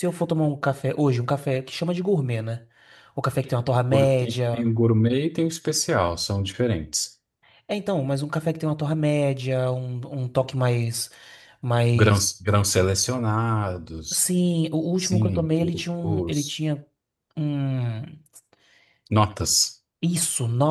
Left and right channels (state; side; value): identical; both; correlation 1.00